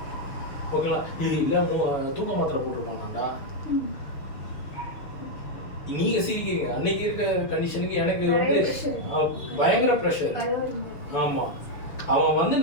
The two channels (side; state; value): right; late; 6.6 ms